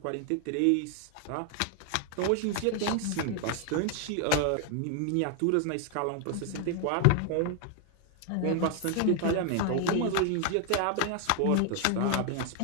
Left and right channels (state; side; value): different; both; correlation 0.00